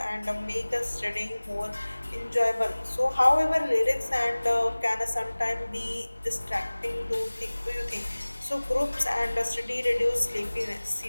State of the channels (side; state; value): both; inverted; correlation -1.00